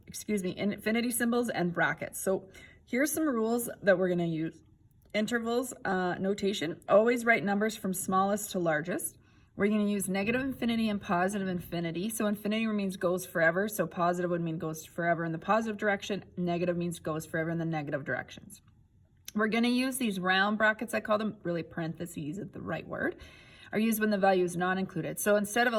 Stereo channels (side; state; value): both; identical; correlation 1.00